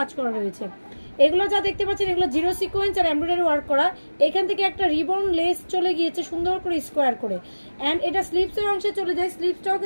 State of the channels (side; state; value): both; inverted; correlation -1.00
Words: করা রয়েছে। এগুলো যা দেখতে পাচ্ছেন এগুলো জিরো সিকোয়েন্স আর এমব্রয়ডারি ওয়ার্ক করা। এখান থেকে একটা রিবন লেস চলে গিয়েছে সুন্দর করে স্কোয়ার করে। অ্যান্ড এটা স্লিভসের অংশে চলে যায়। স্লিভসটাও